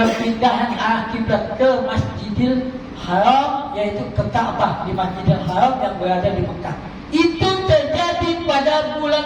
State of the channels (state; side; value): identical; both; correlation 1.00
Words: arah kiblat ke Masjidil Haram, yaitu ke Ka'bah di Masjidil Haram yang berada di Mekah. Itu terjadi pada